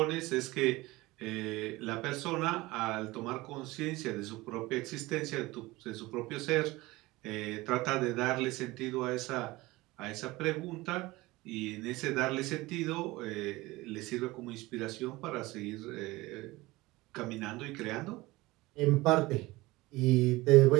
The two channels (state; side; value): quieter; left; 20.4 dB